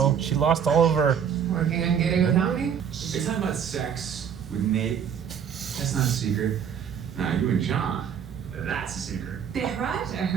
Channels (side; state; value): left; quieter; 7.8 dB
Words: she lost all of her. Working on getting without me? You're talking about sex with Nate. That's not a secret. Nah, you and John. That's a secret.